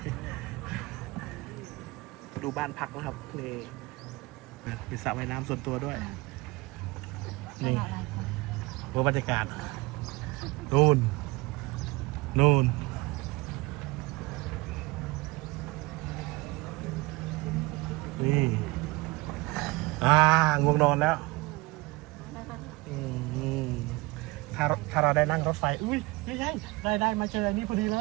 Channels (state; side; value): quieter; left; 23.2 dB